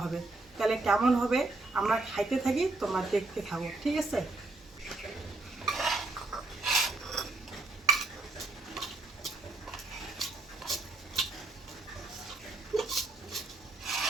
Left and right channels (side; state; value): left; quieter; 3.1 dB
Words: হবে। তাহলে কেমন হবে আমরা খাইতে থাকি, তোমরা দেখতে থাকো, ঠিক আছে?